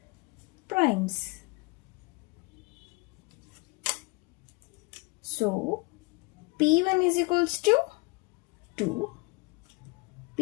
primes. So P1 is equals to 2,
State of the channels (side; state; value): right; quieter; 26.6 dB